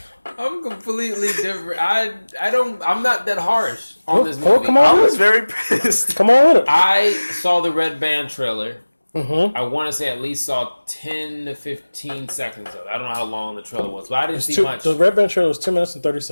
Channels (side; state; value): both; inverted; correlation -1.00